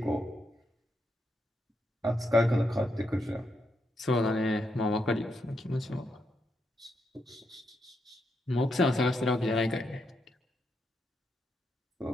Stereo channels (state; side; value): normal; both; correlation 0.81